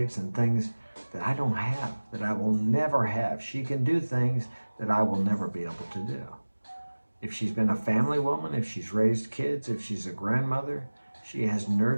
and things that I don't have, that I will never have. She can do things that I will never be able to do. If she's been a family woman, if she's raised kids, if she's a grandmother, she has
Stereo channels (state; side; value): inverted; both; correlation -1.00